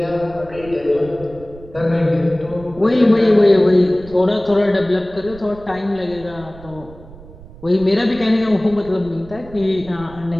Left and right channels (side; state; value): right; noise; rumble, 19 dB below the sound